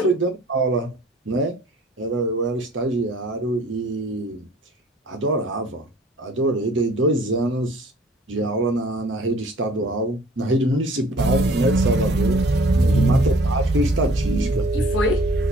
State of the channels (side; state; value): both; normal; correlation 0.53